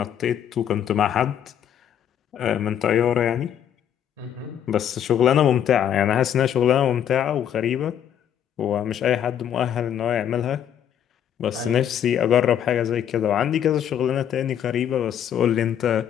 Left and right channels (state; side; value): quieter; right; 9.5 dB